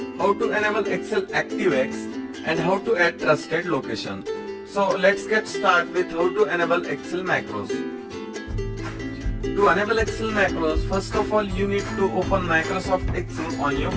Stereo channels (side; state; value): both; identical; correlation 1.00